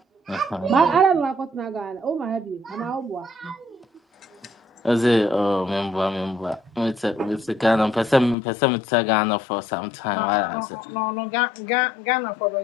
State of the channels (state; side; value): drops out; right; at 8.3 s